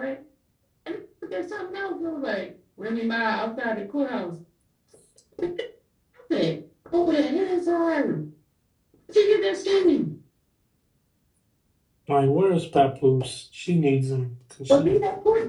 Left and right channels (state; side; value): identical; both; correlation 1.00